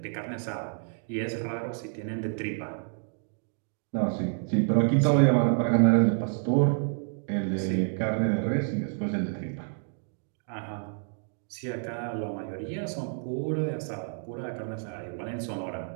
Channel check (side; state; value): left; silent; 58 dB below the other